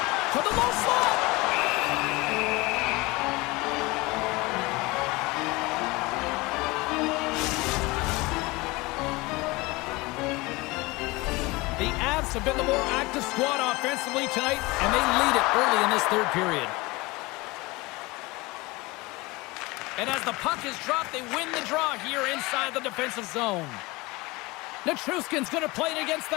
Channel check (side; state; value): right; quieter; 23.0 dB